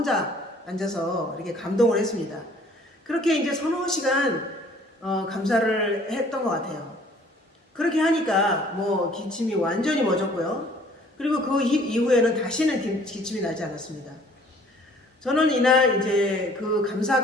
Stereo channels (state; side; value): normal; both; correlation 0.56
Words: 앉아서 이렇게 감동을 했습니다. 그렇게 이제 서너 시간 감사를 했던 것 같아요. 그렇게 하니까 뭐 기침이 완전히 멎었고요. 그리고 그 이후에는 다시는 기침이 나지 않았습니다. 저는 이날 이제 그